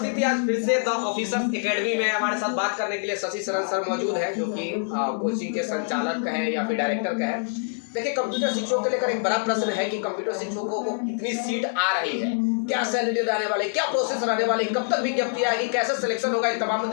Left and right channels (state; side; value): silent; right; digital silence